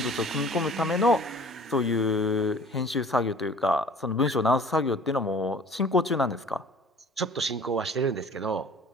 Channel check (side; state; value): both; normal; correlation 0.48